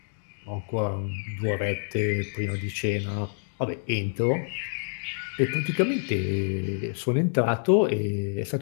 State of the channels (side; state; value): right; silent; digital silence